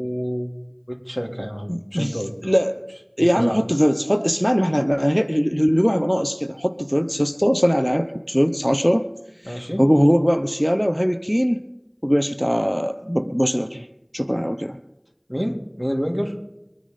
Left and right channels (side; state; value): both; identical; correlation 1.00